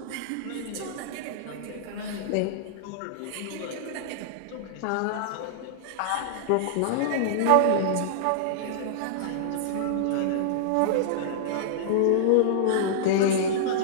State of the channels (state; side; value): different; both; correlation -0.02